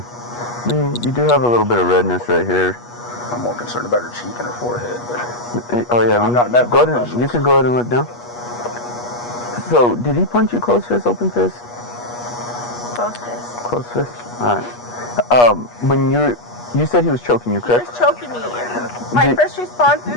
You do have a little bit of redness right here. I'm more concerned about her cheek and her forehead. But oh yeah, I'm not a medical professional. You can go ahead and look down. So, did he punch you close fist, open fist? Close fist. Close fist. All right. When you said he was choking you, correct? He was choking me. My first response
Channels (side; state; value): right; late; 8.3 ms